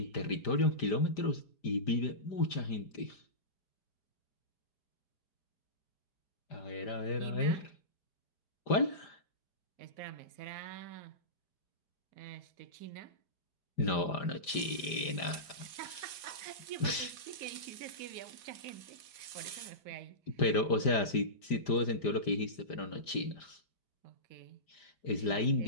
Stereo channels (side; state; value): right; late; 5.0 ms